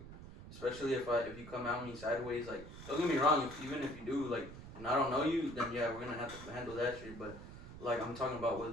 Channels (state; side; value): noise; right; rumble, 13 dB below the sound